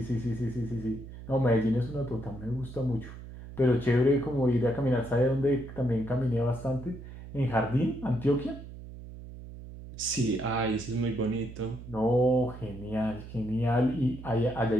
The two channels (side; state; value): right; noise; hum, 13 dB below the sound